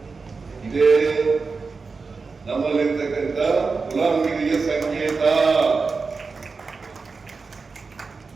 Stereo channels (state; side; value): quieter; left; 4.5 dB